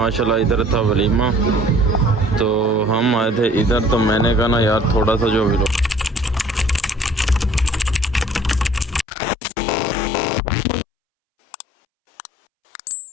इधर था वलीमा, तो हम आए थे इधर। तो मैंने कहा ना यार थोड़ा सा जो भी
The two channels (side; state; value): right; drops out; at 9.1 s